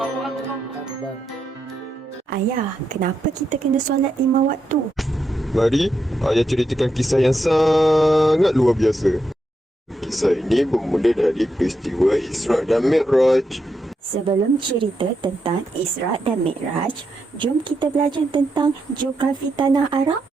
Ayah, kenapa kita kena solat 5 waktu? Mari, ayah ceritakan kisah yang sangat luar biasa. Kisah ini bermula dari peristiwa Isra' dan Mi'raj. Sebelum cerita tentang Isra' dan Mi'raj, jom kita belajar tentang geografi tanah Arab.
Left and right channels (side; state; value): both; normal; correlation 0.83